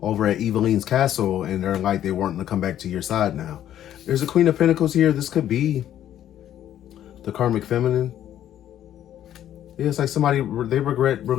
over at Eveline's castle and they're like they weren't going to come back to your side now. There's a Queen of Pentacles here. This could be the karmic feminine. Yeah, it's like somebody, they regret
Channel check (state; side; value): quieter; right; 11.3 dB